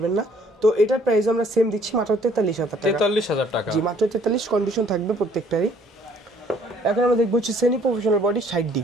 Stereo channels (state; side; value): normal; both; correlation 0.60